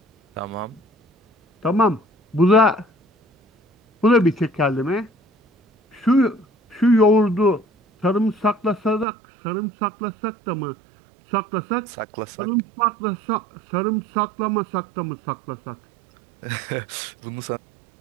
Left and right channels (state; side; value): drops out; left; at 9.1 s